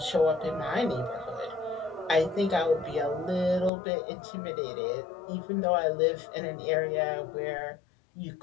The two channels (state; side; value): drops out; right; at 3.7 s